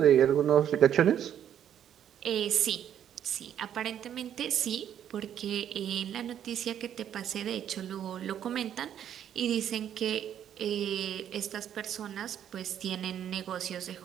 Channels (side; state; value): left; quieter; 9.9 dB